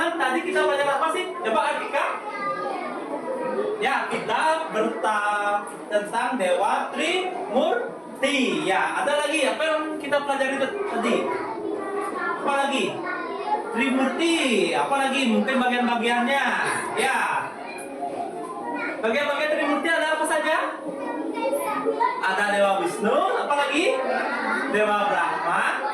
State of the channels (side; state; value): both; identical; correlation 1.00